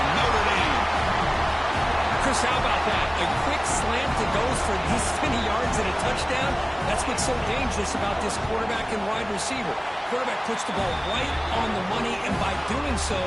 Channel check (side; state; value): both; identical; correlation 1.00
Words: Notre Dame. Chris, how about that? A quick slant that goes for this many yards and a touchdown. That's what's so dangerous about this quarterback and wide receiver. Quarterback puts the ball right on the money, and by doing so,